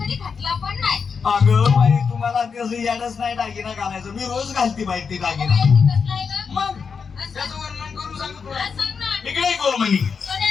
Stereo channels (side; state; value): right; quieter; 5.8 dB